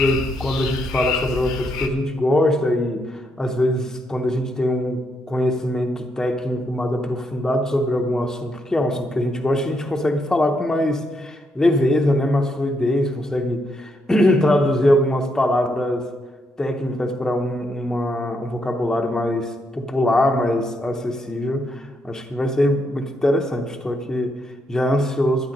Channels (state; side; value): normal; both; correlation 0.78